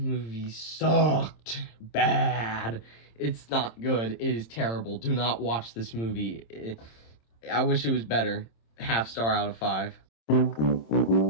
sucked bad. It's not good. It is terrible. Do not watch this movie. I wish it was better. 0.5 star out of 5.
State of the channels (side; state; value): right; late; 26 ms